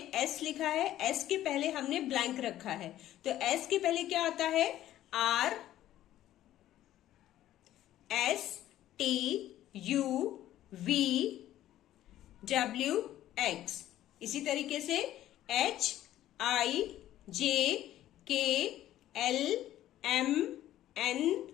S लिखा है, S के पहले हमने ब्लैंक रखा है, तो S के पहले क्या आता है? R, S, T, U, V, W, X। इसी तरीके से H, I, J, K, L, M, N,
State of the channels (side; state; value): right; quieter; 13.2 dB